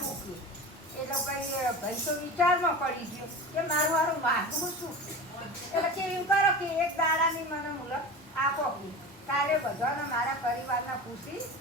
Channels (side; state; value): both; normal; correlation 0.31